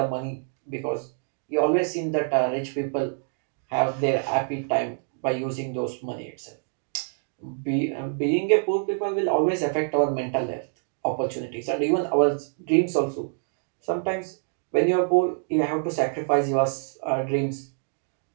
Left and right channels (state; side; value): silent; left; digital silence